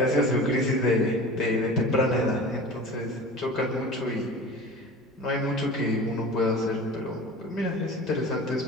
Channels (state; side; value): normal; both; correlation 0.37